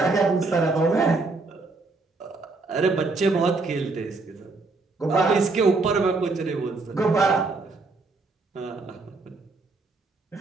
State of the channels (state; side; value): quieter; left; 3.7 dB